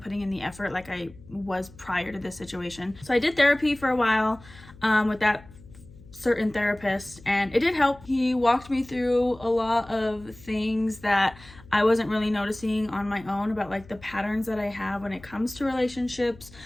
putting in the effort like I was prior to this situation. So I did therapy for a while with that certain therapist, and it did help. He walked me through a lot of things that I wasn't really noticing on my own about like the patterns that I have when it comes to relationships,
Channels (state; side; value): noise; left; hum, 22 dB below the sound